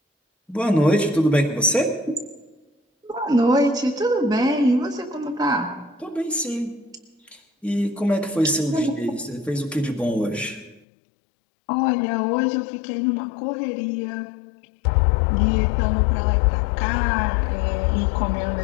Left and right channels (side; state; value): right; drops out; at 10.8 s